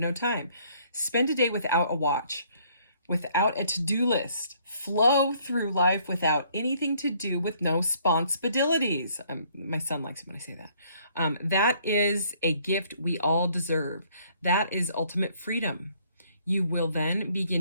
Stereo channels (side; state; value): both; inverted; correlation -0.64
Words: time? Spend a day without a watch, without a to-do list. Flow through life without anything to do, with no responsibilities. My son likes it when I say that. That is a gift we all deserve. That is ultimate freedom. You will then